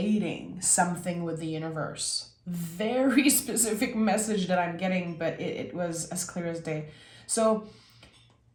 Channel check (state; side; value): identical; both; correlation 1.00